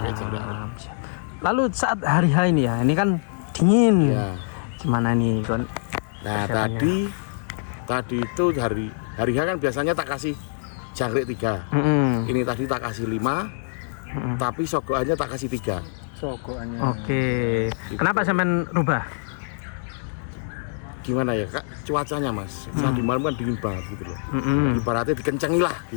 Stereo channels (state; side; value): silent; right; digital silence